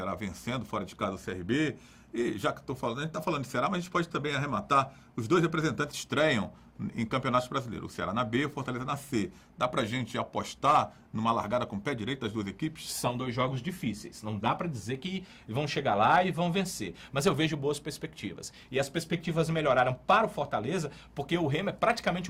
vencendo fora de casa o CRB? E já que estou falando, a gente está falando de Ceará, mas a gente pode também arrematar, os dois representantes estreiam em campeonatos brasileiros, o Ceará na B e o Fortaleza na C. Dá pra gente apostar numa largada com o pé direito das duas equipes? São dois jogos difíceis, não dá pra dizer que vão chegar lá e vão vencer, mas eu vejo boas perspectivas. E as perspectivas melhoraram para o Fortaleza porque o Remo é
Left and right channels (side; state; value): both; identical; correlation 1.00